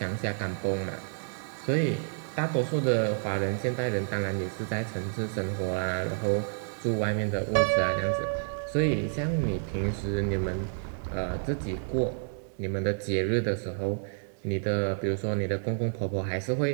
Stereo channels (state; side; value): silent; left; digital silence